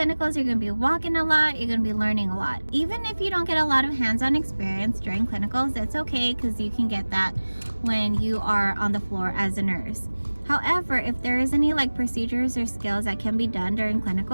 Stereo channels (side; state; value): both; inverted; correlation -1.00